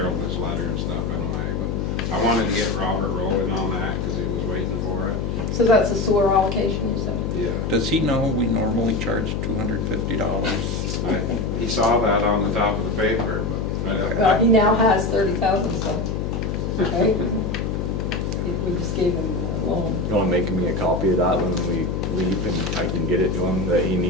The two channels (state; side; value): noise; left; hum, 1 dB below the sound